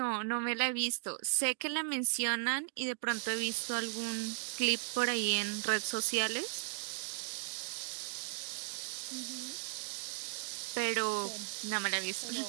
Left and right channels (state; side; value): silent; left; digital silence